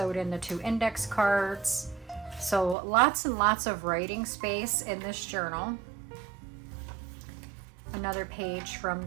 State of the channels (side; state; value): left; drops out; at 2.8 s